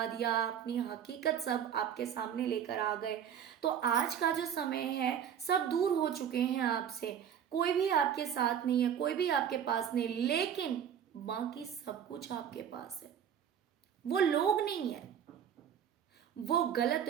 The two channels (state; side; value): quieter; left; 8.8 dB